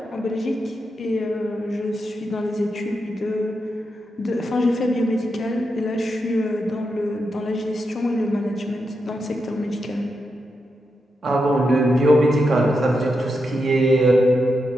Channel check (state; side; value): normal; both; correlation 0.86